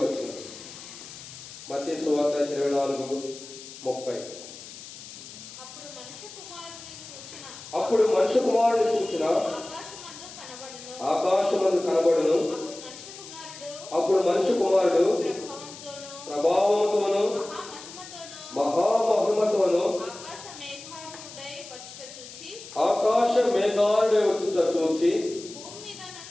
వచ్చింది. మత్తయి సువార్త 24:30. అప్పుడు మనుష్య కుమారుని సూచన ఆకాశమందు కనబడును. అప్పుడు మనుష్య కుమారుడు ప్రభావముతోను మహామహిమతోను ఆకాశ మేఘాలుడై వచ్చుట చూచి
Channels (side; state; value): left; noise; hiss, 15 dB below the sound